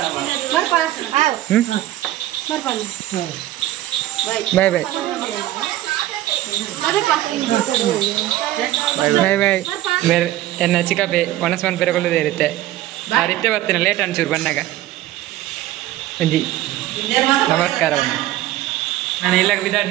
ಬಾಯ್ ಬಾಯ್ ಬಾಯ್ ಬಾಯ್ ಬೇರೆ ಎನ್ನ ಚಿಕ್ಕಪ್ಪೆ ಒಣಸ್ಮನ್ ಪೆರಗೊಳ್ಳೋದೇ ಇರುತ್ತೆ ಆ ರೀತಿ ಬರ್ತೀನಿ ಲೇಟ್ ಅನ್ಸೂರು ಬಂದಾಗ ಒಂಜಿ ನಮಸ್ಕಾರ ನಾನು ಇಲ್ಲಾಗ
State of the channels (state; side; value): quieter; left; 14.7 dB